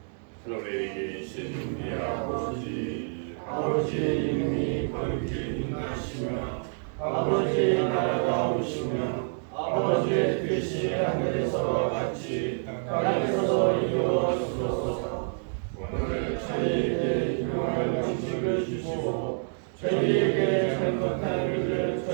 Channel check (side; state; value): left; silent; digital silence